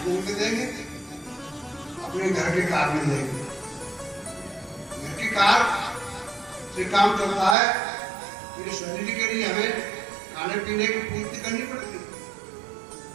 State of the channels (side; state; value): left; drops out; at 7.6 s